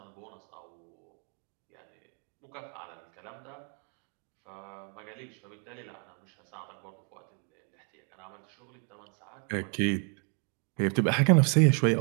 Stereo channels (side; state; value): left; quieter; 37.3 dB